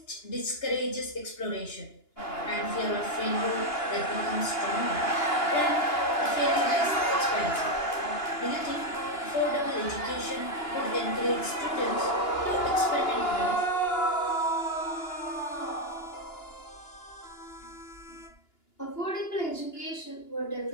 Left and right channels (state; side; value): late; right; 2.9 ms